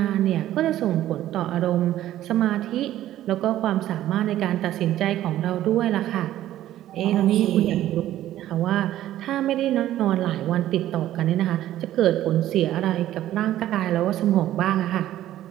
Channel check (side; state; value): left; quieter; 13.3 dB